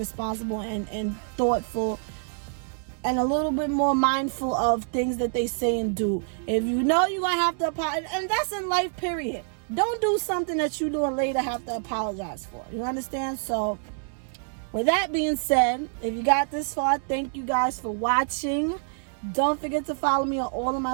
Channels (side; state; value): left; silent; 60 dB below the other